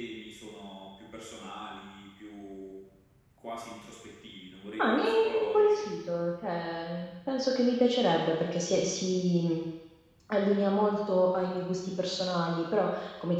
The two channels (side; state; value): both; identical; correlation 1.00